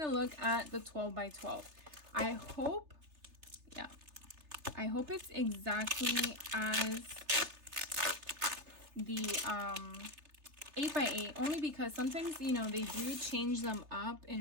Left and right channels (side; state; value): left; late; 3.3 ms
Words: look at the 12 by 12. I hope it's exactly as the 8 by 8, only because sometimes, you know, they do change them up